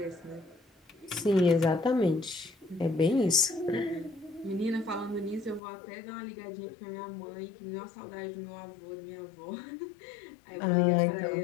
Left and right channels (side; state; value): right; drops out; at 5.6 s